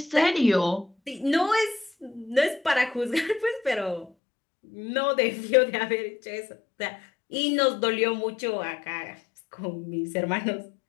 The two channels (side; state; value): right; drops out; at 4.1 s